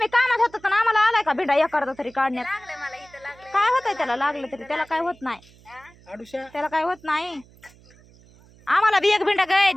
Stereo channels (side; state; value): right; noise; hum, 26 dB below the sound